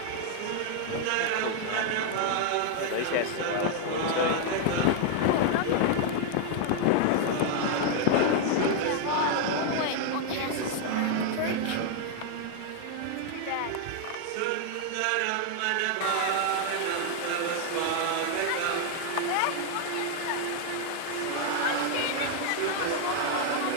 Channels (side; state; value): both; different; correlation 0.00